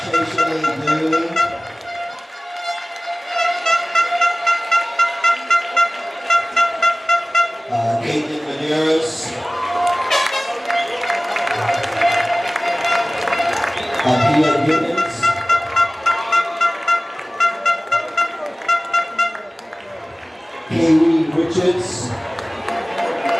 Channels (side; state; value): both; normal; correlation 0.97